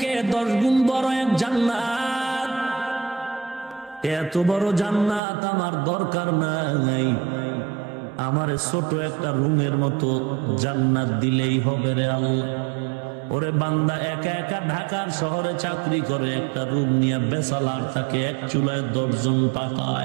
10 গুণ বড় এক জান্নাত। এত বড় জান্নাত আমার দরকার নাই, আমার ছোট একটা রুমের মতো জান্নাত দিলেই হবে রে আল্লাহ। ওরে বান্দা, একা একা ঢাকার শহরে চাকরি করে, একটা রুম নিয়ে বেসালার থাকে, এক চুলায় 10 জন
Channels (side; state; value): left; drops out; at 5.2 s